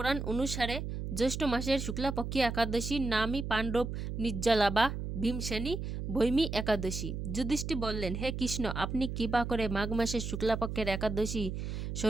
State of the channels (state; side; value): noise; right; hum, 5 dB below the sound